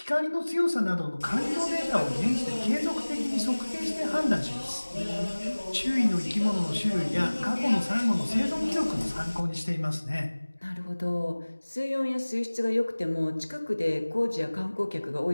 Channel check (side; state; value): both; inverted; correlation -1.00